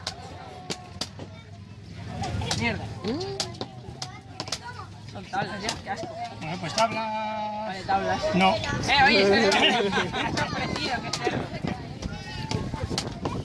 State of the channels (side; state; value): both; identical; correlation 1.00